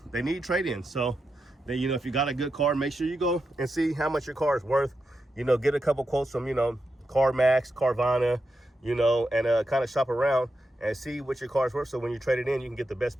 they need trade-ins. So then, you know, if you got a good car, make sure you go and see how much your car is worth. You know, get a couple quotes from, you know, CarMax, Carvana, you know, and kind of shop around and see what your car's worth. So when you trade it in, you can get the best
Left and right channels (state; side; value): normal; both; correlation 0.87